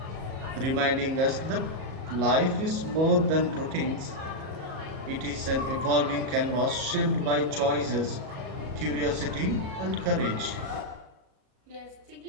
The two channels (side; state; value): left; late; 38 ms